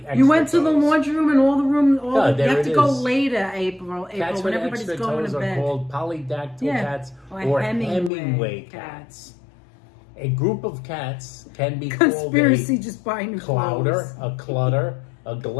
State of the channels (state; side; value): drops out; right; at 8.1 s